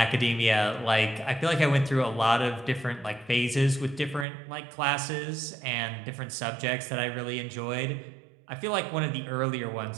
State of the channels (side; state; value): left; drops out; at 4.2 s